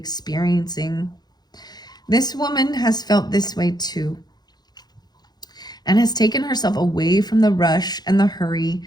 This woman has felt this way too, and has taken herself away from the rush and the hurry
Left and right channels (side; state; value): right; late; 0.20 ms